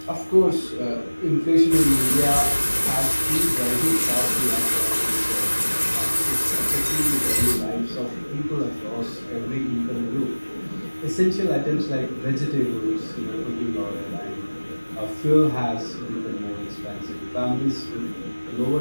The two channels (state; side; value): inverted; both; correlation -1.00